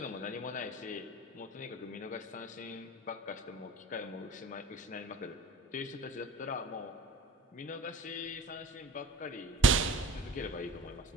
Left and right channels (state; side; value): normal; both; correlation 0.41